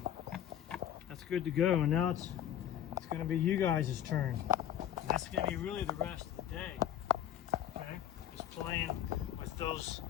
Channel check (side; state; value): right; quieter; 10.7 dB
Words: That's good to go. And now it's going to be you guys' turn. And that's going to be really the rest of the day. Okay? Just playing with those